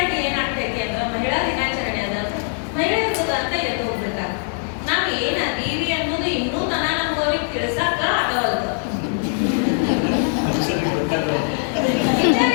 ಏನಾಗ್ತೈತಿ ಅಂದ್ರೆ ಮಹಿಳಾ ದಿನಾಚರಣೆ ಅದ ಮಹಿಳೆಯರು ಅಂತ ಎದ್ದು ಹೋಗ್ಬಿಡ್ತಾರೆ. ನಾವು ಏನದೀವಿ ಅನ್ನೋದು ಇನ್ನೂ ತನ ನಮ್ಗವ್ರಿಗೆ ತಿಳಿಸಾಕ ಆಗವಲ್ದು.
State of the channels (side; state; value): right; silent; 62 dB below the other